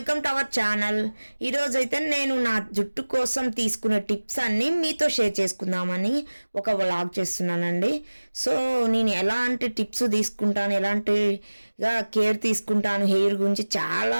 to our channel. ఈరోజు అయితే నేను నా జుట్టు కోసం తీసుకునే టిప్స్ అన్నీ మీతో షేర్ చేసుకుందామని ఒక వ్లాగ్ చేస్తున్నానండి. సో నేను ఎలాంటి టిప్స్ తీసుకుంటాను, ఎలాంటిగా కేర్ తీసుకుంటాను హెయిర్ గురించి, చాలా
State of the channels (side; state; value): both; inverted; correlation -1.00